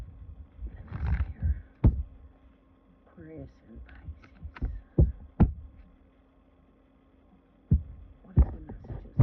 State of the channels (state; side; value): identical; both; correlation 1.00